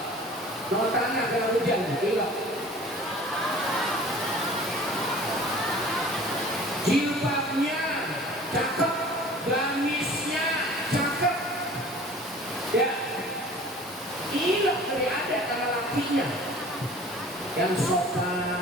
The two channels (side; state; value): both; normal; correlation 0.45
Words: Mau tanah kalau hujan, ilok. Jilbabnya cakep, gamisnya cakep. Ya, ilok dari ada karena lakinya yang